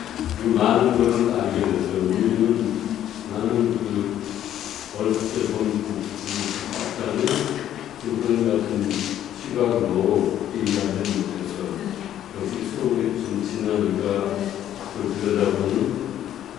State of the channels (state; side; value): quieter; right; 11.3 dB